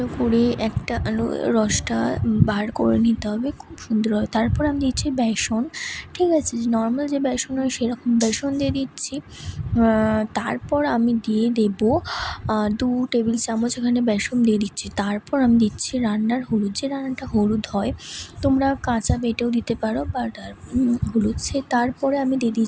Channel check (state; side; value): identical; both; correlation 1.00